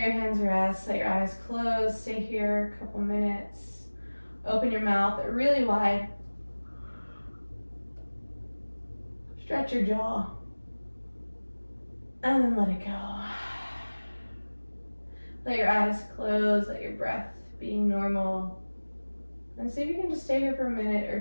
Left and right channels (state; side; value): inverted; both; correlation -1.00